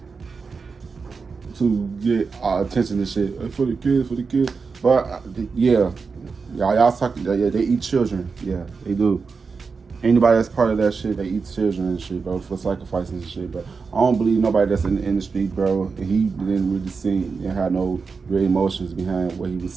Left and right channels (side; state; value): left; quieter; 5.0 dB